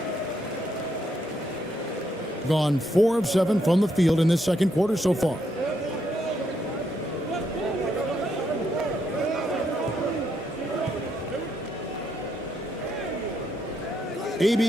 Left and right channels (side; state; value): both; normal; correlation 0.76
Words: Gone 4 of 7 from the field in this second quarter so far.